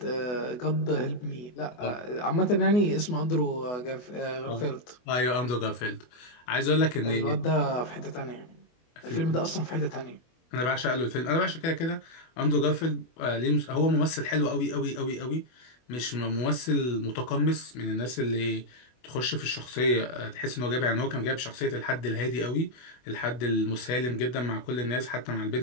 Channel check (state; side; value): late; right; 24 ms